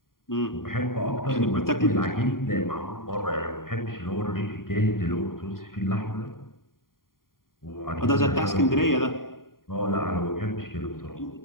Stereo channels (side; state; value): right; late; 0.91 ms